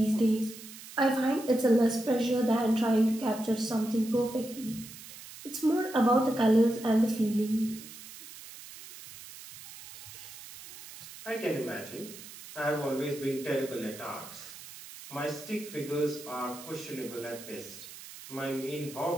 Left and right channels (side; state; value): right; noise; hiss, 15 dB below the sound